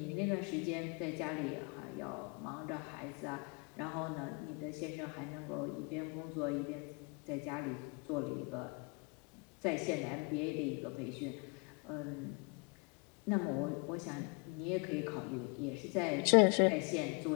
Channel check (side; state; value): right; quieter; 32.4 dB